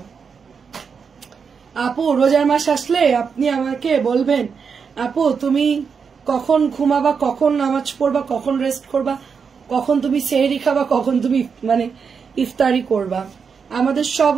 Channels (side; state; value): left; quieter; 6.0 dB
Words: আপু রোজার মাস আসলে আপনি আমাকে বলবেন, আপু তুমি কখন ঘুমাবা, কখন নামাজ পড়বা, কখন রেস্ট করবা, কখন তুমি সেহরি খাবা, কখন তুমি মানে ইফতারি করবা। আমাদের সব